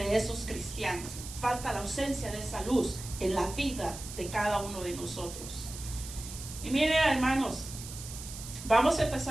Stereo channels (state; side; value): noise; right; hiss, 11 dB below the sound